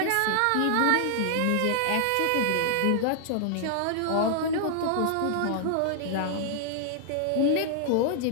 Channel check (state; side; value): different; both; correlation -0.01